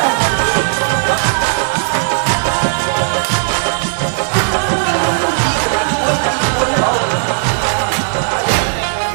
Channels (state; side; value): silent; left; 65 dB below the other